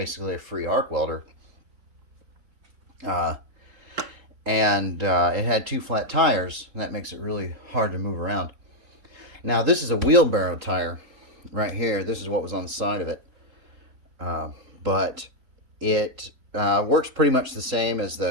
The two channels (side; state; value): left; late; 3.8 ms